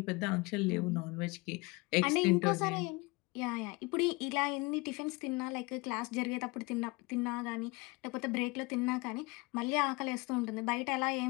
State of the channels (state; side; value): quieter; right; 25.5 dB